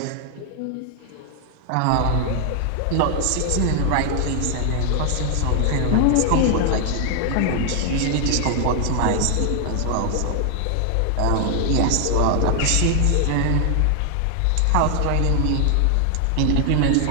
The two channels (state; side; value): different; both; correlation 0.00